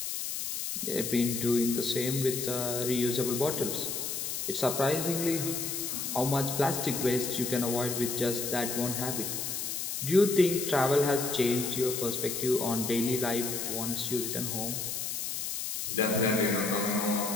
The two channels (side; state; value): left; noise; hiss, 3 dB below the sound